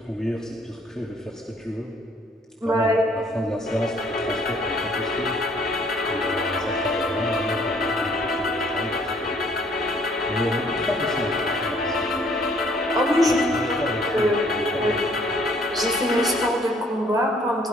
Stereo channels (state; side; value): normal; both; correlation 0.61